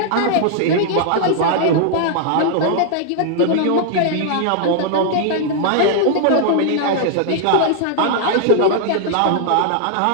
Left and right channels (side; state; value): both; different; correlation -0.01